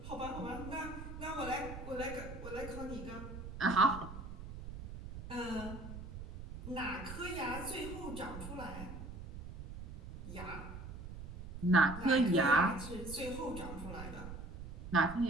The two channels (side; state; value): right; noise; rumble, 10 dB below the sound